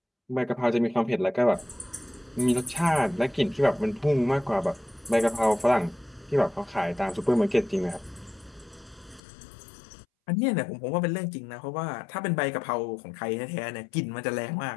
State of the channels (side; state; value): right; drops out; at 9.2 s